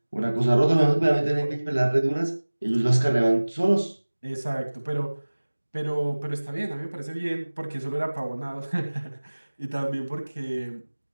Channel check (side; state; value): both; inverted; correlation -1.00